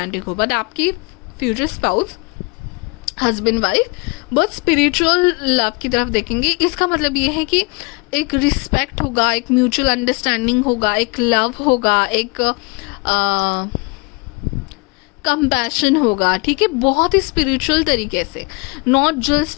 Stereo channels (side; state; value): right; quieter; 29.5 dB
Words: हो, बट आपकी फ्यूचर स्पाउस, हस्बैंड वाइफ, बहुत स्पिरिचुअल लव की तरफ देखेंगे. इसका मतलब ये है कि एक रिस्पेक्ट होगा, एक म्यूचुअल अंडरस्टैंडिंग होगा, एक लव होगा, एक कंपैशन होगा. ठीक है, बहुत ही स्पिरिचुअल तरीके से. Not